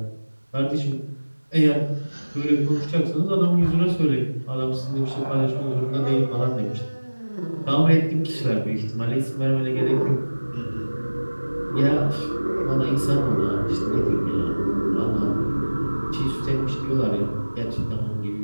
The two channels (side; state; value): both; inverted; correlation -1.00